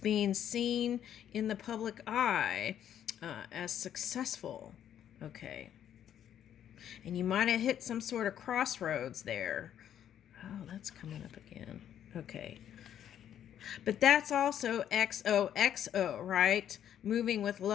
seen in the public eye as successful. Okay. And you might have hit some sort of crossroads there. Oh, that's coming up again. Okay. But that's also XOXO, right? Moving with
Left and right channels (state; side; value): quieter; right; 10.1 dB